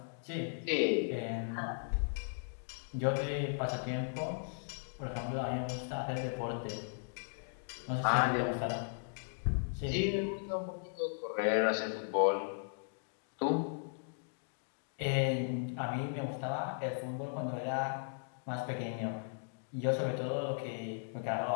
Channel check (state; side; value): silent; right; digital silence